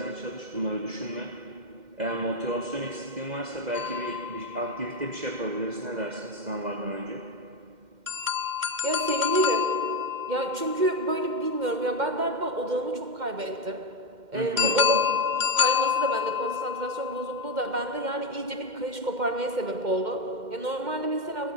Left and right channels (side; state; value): left; late; 2.1 ms